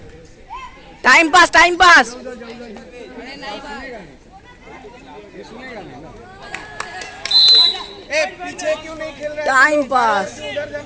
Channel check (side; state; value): both; identical; correlation 1.00